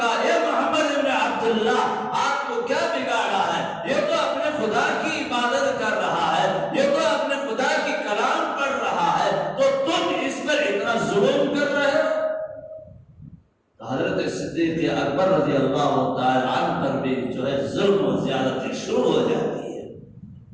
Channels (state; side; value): identical; both; correlation 1.00